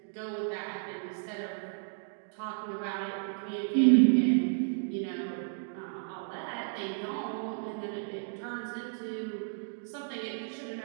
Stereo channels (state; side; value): silent; left; digital silence